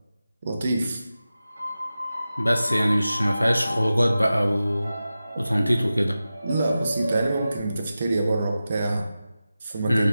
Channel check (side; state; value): both; inverted; correlation -0.94